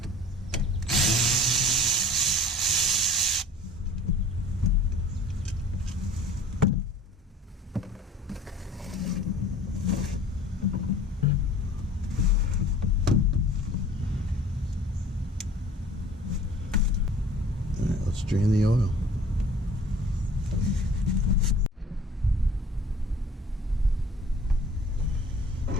Drain the oil.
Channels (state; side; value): normal; both; correlation 0.47